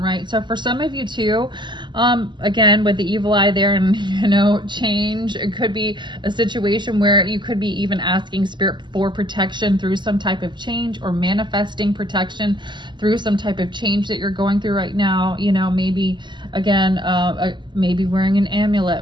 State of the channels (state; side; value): late; left; 0.22 ms